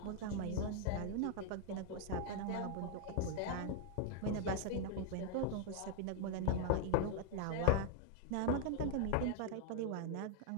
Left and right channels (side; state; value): both; different; correlation 0.00